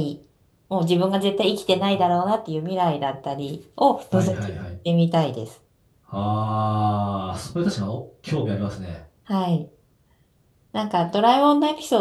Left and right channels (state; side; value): identical; both; correlation 1.00